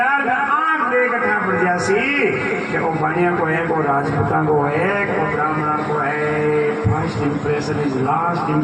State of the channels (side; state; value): both; identical; correlation 1.00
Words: में 8 देखा पड़ जासी कि वो पानिया को है, को राजपूता को है, को ब्राह्मणा को है। First impression is last